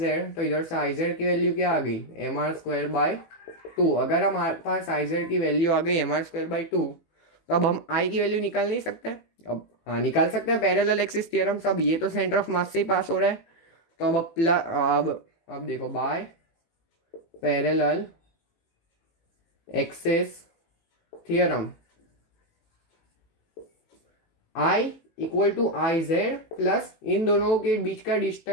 तो इधर से आई जेड की वैल्यू क्या आ गई, mr²/2। अगर हमारे पास आई जेड की वैल्यू आ गई mr²/2, तो अब हम आई की वैल्यू निकाल नहीं सकते? अब हाँ, निकाल सकते हैं, पैरेलल एक्सिस थ्योरम। सब ये तो सेंटर ऑफ मास से ही पास हो रहा है, तो अब देखो, by parallel axis theorem, I equal to I z plus इन दोनों के बीच का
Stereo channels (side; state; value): right; late; 18 ms